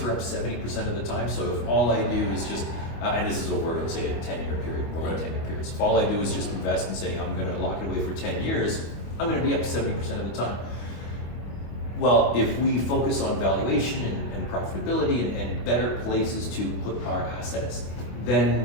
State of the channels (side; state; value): right; late; 25 ms